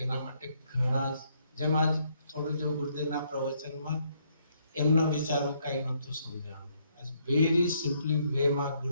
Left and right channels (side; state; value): both; inverted; correlation -0.71